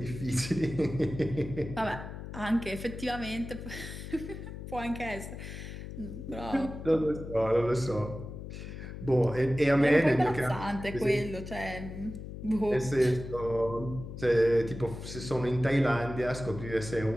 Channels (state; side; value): noise; left; hum, 10 dB below the sound